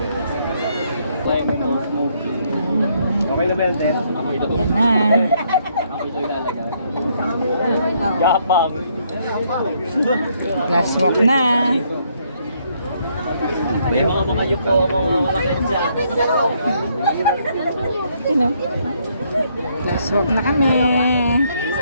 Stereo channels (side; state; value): both; inverted; correlation -0.71